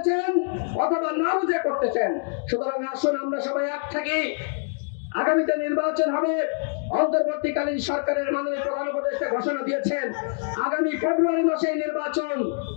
অথবা না বুঝে করতেছেন। সুতরাং আসুন আমরা সবাই এক থাকি। আগামীতে নির্বাচন হবে। অন্তর্বর্তীকালীন সরকারের মাননীয় প্রধান উপদেষ্টা ঘোষণা দিয়েছেন আগামী ফেব্রুয়ারি মাসে নির্বাচন।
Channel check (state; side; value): silent; right; 62 dB below the other